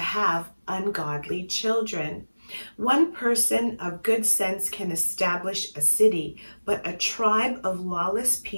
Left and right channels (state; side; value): inverted; both; correlation -1.00